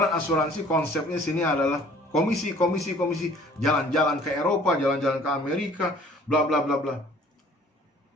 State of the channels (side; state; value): both; normal; correlation 0.53